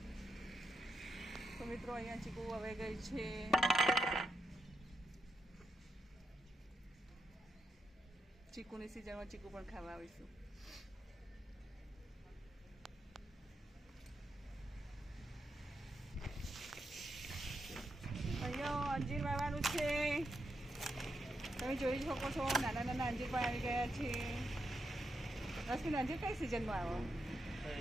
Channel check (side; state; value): both; normal; correlation 0.84